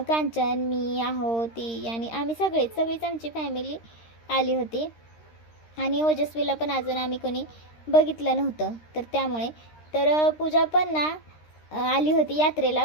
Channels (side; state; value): right; late; 13 ms